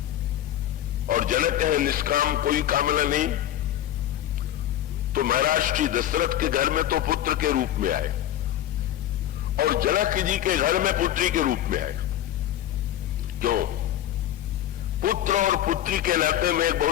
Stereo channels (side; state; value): right; quieter; 12.2 dB